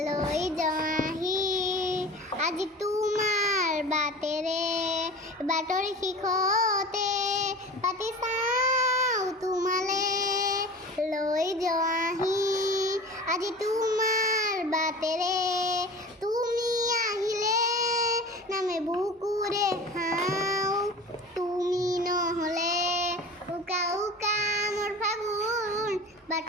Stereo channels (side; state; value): both; normal; correlation 0.37